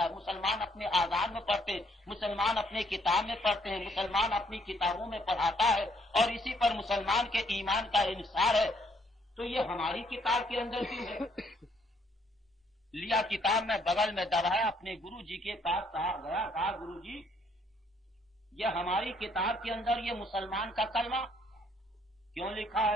है, मुसलमान अपने आज़ान में पढ़ते हैं, मुसलमान अपने किताब में पढ़ते हैं, मुसलमान अपनी किताबों में पढ़ाता है और इसी पर मुसलमान के ईमान का इंसार है। तो ये हमारी किताब के अंदर क्यों है? लिया किताब में बगल में दबाया, अपने गुरु जी के पास गया, कहा गुरु जी ये हमारी किताब के अंदर ये मुसलमान का कलमा क्यों लिखा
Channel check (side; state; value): both; normal; correlation 0.68